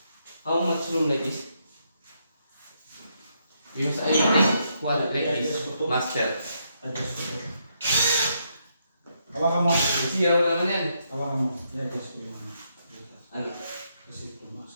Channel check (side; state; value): both; inverted; correlation -0.78